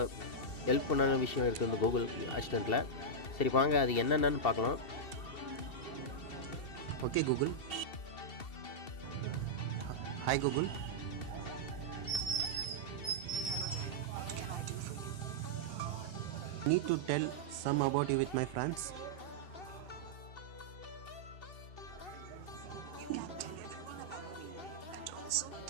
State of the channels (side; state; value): right; late; 2.7 ms